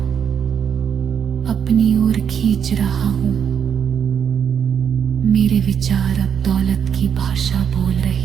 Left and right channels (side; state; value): left; quieter; 7.9 dB